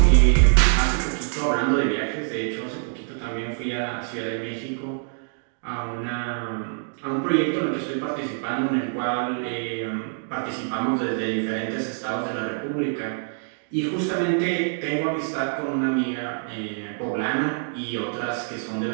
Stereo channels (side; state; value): left; silent; digital silence